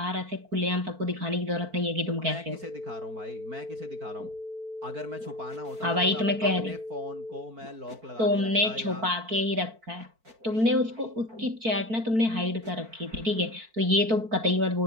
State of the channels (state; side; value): late; left; 4.5 ms